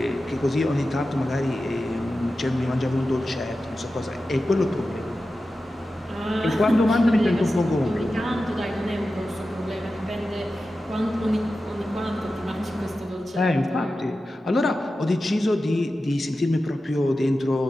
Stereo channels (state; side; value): normal; both; correlation 0.93